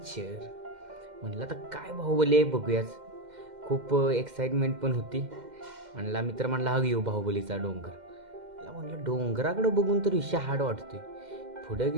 म्हणलं आता काय बाहुबली आहे बघूयाच. खूप एक्साइटमेंट पण होती. म्हणला मित्र म्हणला हा घेऊ बाहुबलीचा डोंगर. मला म्हणलं डोंगराकडं बघून तर विषय हार्ड वाटतोय. पुढं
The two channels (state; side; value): late; left; 2.1 ms